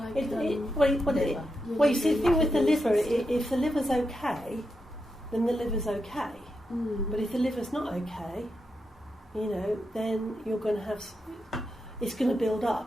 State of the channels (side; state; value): both; normal; correlation 0.86